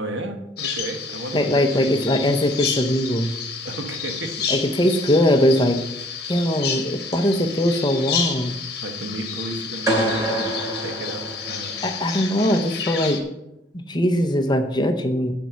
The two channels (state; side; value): normal; both; correlation 0.59